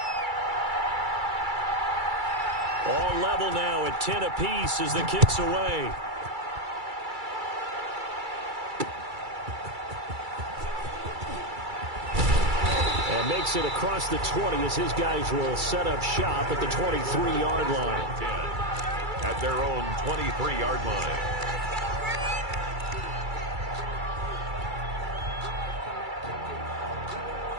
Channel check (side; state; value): left; late; 2.3 ms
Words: All level now at 10 apiece as the kick's away. And makes it across the 20 as his guys will set up shop at the 23-yard line. 10. At their own 23-yard line.